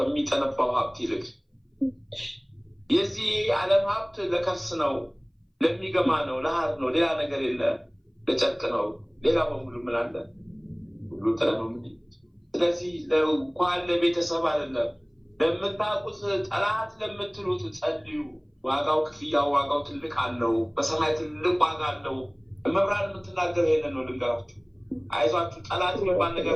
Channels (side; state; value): both; identical; correlation 1.00